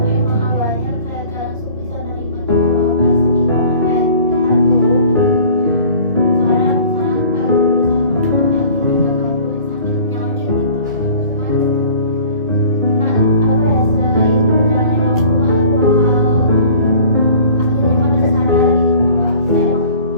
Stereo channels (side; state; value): both; inverted; correlation -0.48